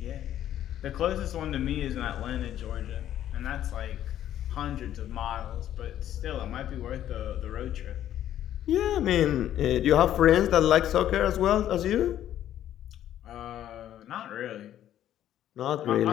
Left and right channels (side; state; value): right; quieter; 11.6 dB